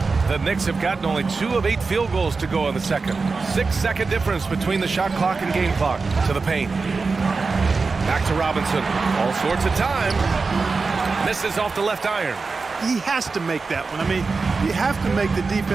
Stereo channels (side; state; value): left; quieter; 4.3 dB